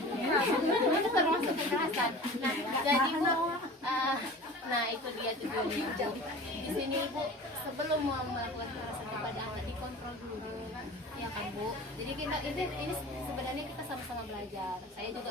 itu termasuk kekerasan. Nah jadi Bu, nah itu dia tujuannya, Bu. Di sini Ibu sebelum mau melakukan kekerasan kepada anak dikontrol dulu ya kan, Bu. Jadi ini sebenarnya kita sama-sama belajar. Saya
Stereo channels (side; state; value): both; normal; correlation 0.38